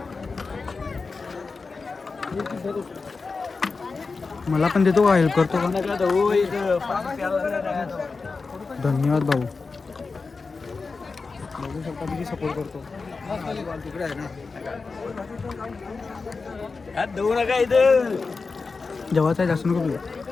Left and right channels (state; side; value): quieter; right; 4.3 dB